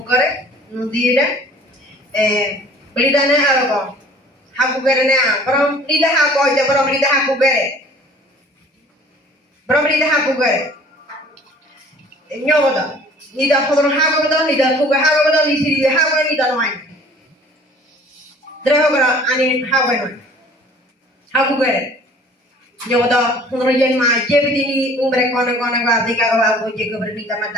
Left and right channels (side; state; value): both; normal; correlation 0.50